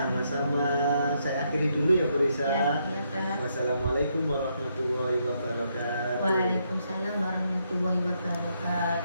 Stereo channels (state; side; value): inverted; both; correlation -0.77